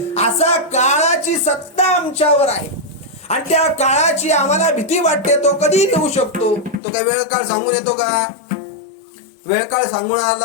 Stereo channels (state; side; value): drops out; right; at 6.8 s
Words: असा काळाची सत्ता आमच्यावर आहे आणि त्या काळाची आम्हाला भीती वाटते. तो कधी येऊ शकतो. तो काय वेळ काळ सांगून येतो का? वेळ काळ सांगून आला